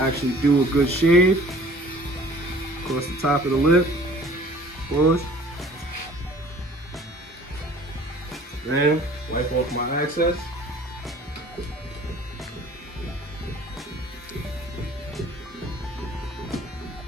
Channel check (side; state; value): both; normal; correlation 0.50